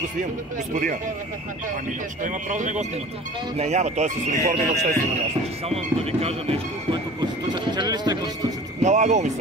снимам, господина. Ами, ще има право да не го снимате. Не, няма, той е с униформи на обществено място. Само да ви кажа нещо, което Конституцията. Чели ли сте Конституцията? Налагало ми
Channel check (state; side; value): normal; both; correlation 0.42